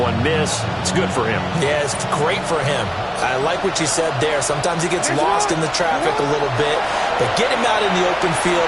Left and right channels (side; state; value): both; identical; correlation 1.00